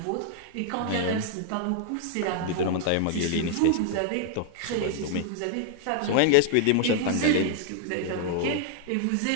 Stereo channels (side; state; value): both; different; correlation 0.00